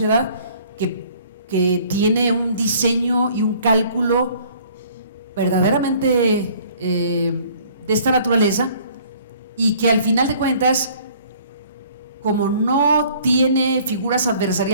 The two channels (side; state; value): both; inverted; correlation -0.55